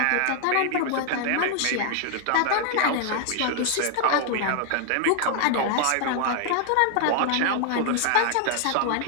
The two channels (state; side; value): different; both; correlation 0.00